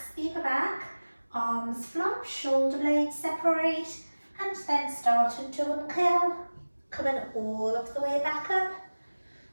the upper back, arms flop, shoulder blades separate, and then starting to uncurl, coming all of the way back up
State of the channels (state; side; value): inverted; both; correlation -1.00